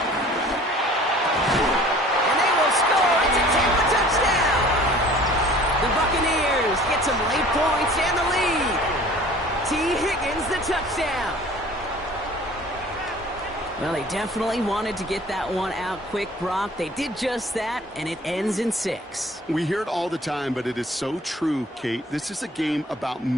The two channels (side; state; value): both; normal; correlation 0.48